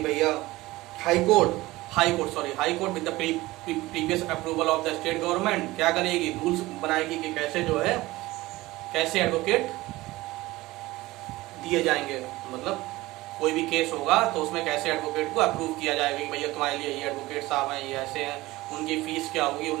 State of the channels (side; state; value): left; quieter; 19.0 dB